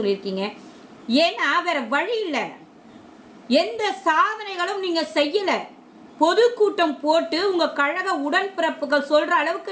ஏன்னா வேற வழி இல்லை, எந்த சாதனைகளும் நீங்கள் செய்யலை. பொதுக்கூட்டம் போட்டு உங்கள் கழக உடன்பிறப்புகள் சொல்கிற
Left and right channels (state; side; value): identical; both; correlation 1.00